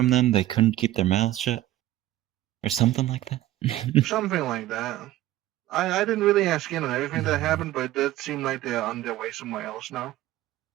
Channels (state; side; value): quieter; left; 14.7 dB